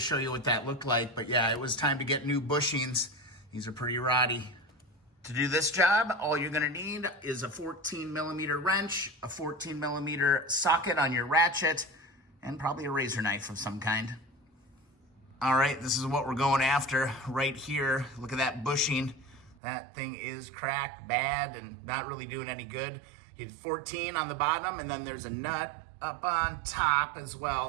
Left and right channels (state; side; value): drops out; left; at 19.6 s